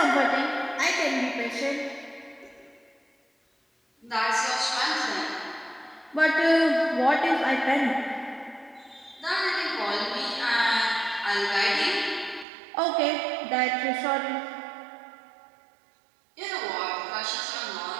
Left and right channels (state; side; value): drops out; left; at 12.5 s